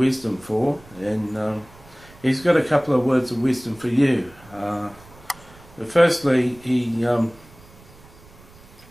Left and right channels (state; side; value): noise; right; rumble, 24 dB below the sound